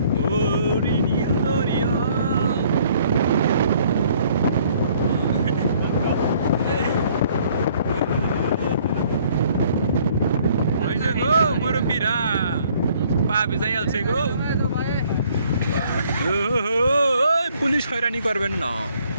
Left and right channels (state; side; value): inverted; both; correlation -0.61